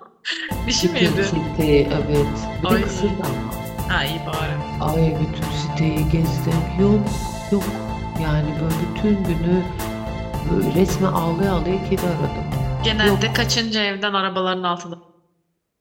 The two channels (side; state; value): both; identical; correlation 1.00